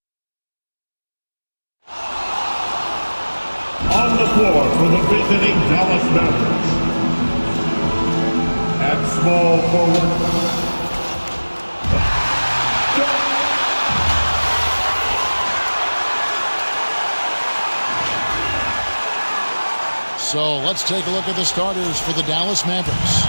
on the floor for the visiting Dallas Mavericks. At small forward, So let's take a look at the starters for the Dallas Mavericks.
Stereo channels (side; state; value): both; inverted; correlation -1.00